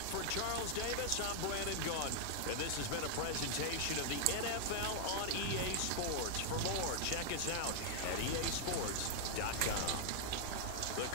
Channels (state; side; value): different; both; correlation -0.01